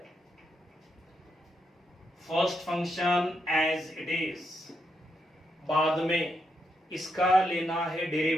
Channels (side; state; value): both; normal; correlation 0.81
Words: First function as it is, बाद में इसका लेना है